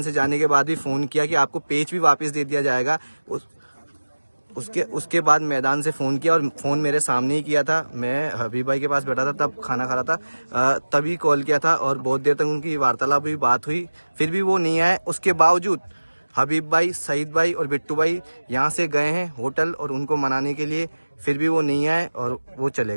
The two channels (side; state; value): both; inverted; correlation -1.00